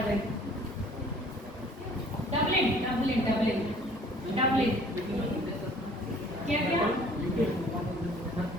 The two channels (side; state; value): both; normal; correlation 0.54